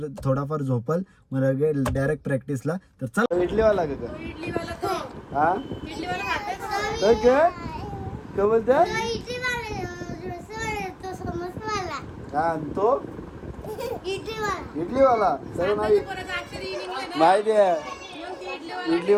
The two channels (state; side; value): identical; both; correlation 1.00